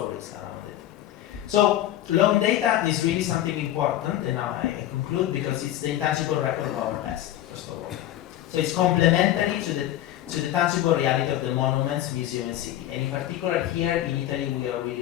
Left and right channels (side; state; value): right; quieter; 13.1 dB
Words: around it. So long data is really something important, and now I conclude because it's the intangible record of our past, first of all. So it's complementary to the tangible reality of the monuments, museum, and city. And in particular here in Italy, we are